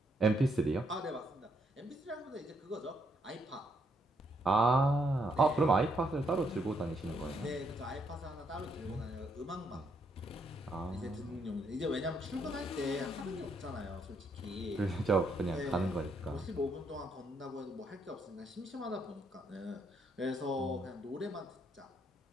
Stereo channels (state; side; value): normal; both; correlation 0.74